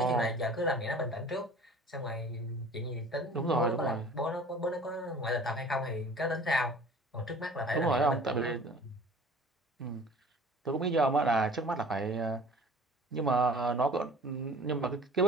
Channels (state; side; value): normal; both; correlation 0.46